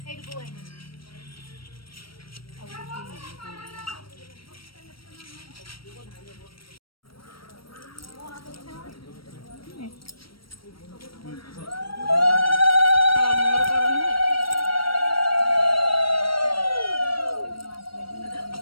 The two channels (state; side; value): late; right; 0.75 ms